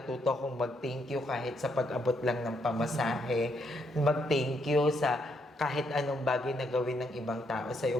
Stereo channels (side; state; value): both; normal; correlation 0.75